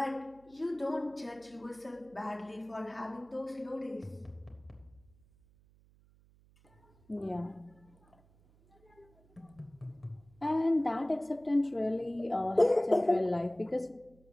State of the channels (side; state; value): right; noise; hum, 29 dB below the sound